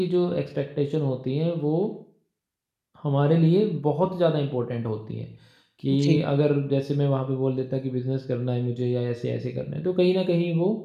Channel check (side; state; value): both; identical; correlation 1.00